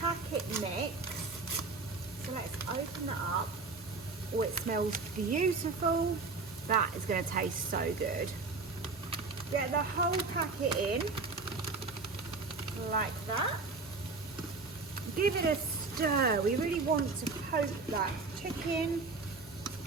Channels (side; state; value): left; quieter; 4.1 dB